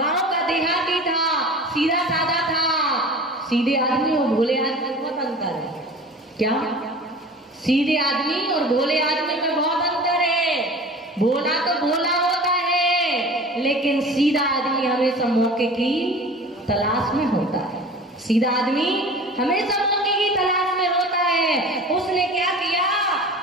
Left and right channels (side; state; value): both; normal; correlation 0.39